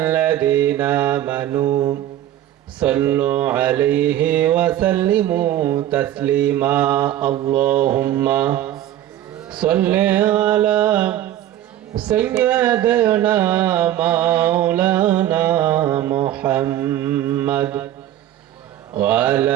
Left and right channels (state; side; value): quieter; left; 12.5 dB